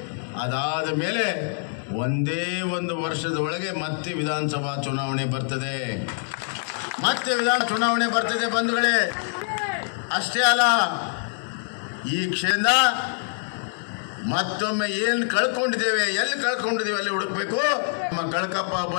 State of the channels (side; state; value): right; silent; digital silence